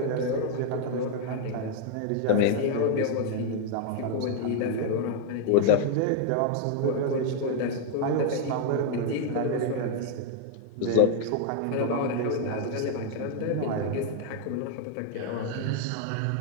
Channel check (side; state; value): both; different; correlation 0.00